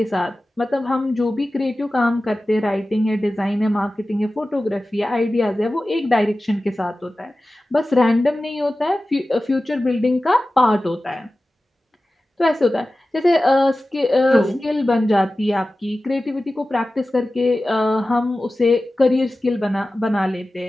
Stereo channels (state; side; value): normal; both; correlation 0.95